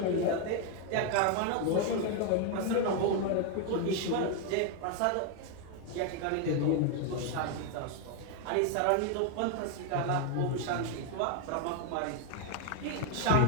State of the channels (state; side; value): different; both; correlation 0.01